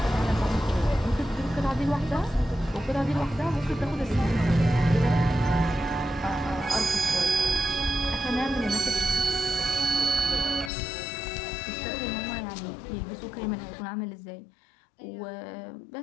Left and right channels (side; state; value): right; drops out; at 10.7 s